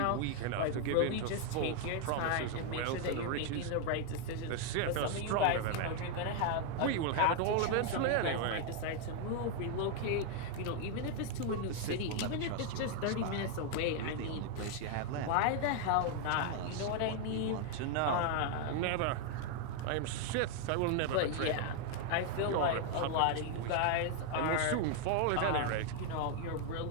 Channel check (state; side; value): different; both; correlation 0.00